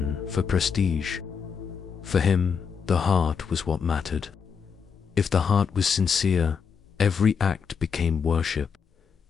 for prestige. For him, the heart was what mattered. If the heart was sincere, every act became worship.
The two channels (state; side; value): quieter; right; 6.3 dB